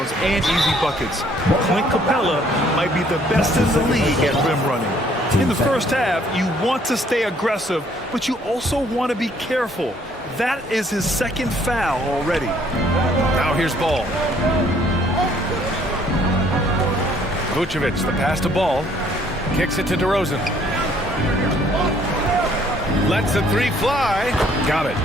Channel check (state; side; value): normal; both; correlation 0.62